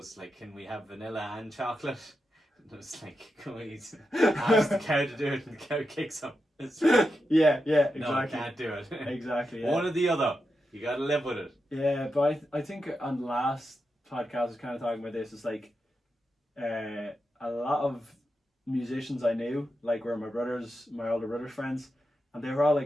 like, "Can we have vanilla and chocolate?" And it's like, "Can we ask the cow to do it?" And the cow kicks him. It's like, yeah, exactly. no, I can't do it. Exactly. Yeah. One or the other. You gotta live with it. Yeah, but I think on the last podcast I was kind of talking about this. It's like a lot of musicians I knew, like were my older brother's friends, and they were all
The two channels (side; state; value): both; normal; correlation 0.88